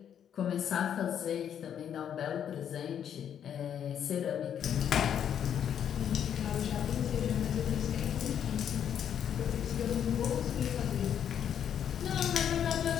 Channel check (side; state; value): right; quieter; 9.0 dB